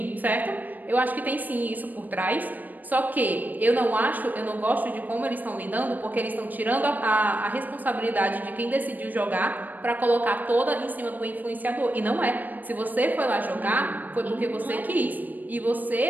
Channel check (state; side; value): late; left; 0.084 ms